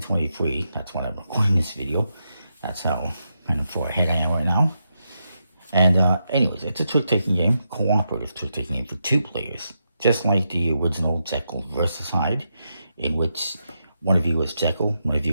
That's when I'm recording this video. That's how kind of far ahead I am right now. And anyways, it's a trick-taking game, cooperative trick-taking game for 2 players, just like the original Jekyll versus Hyde, in which one of you is Jekyll, one of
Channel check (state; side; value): inverted; both; correlation -0.85